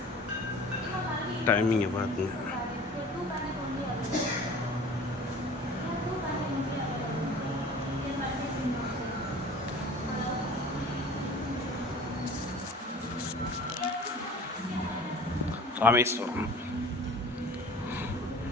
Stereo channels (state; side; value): normal; both; correlation 0.43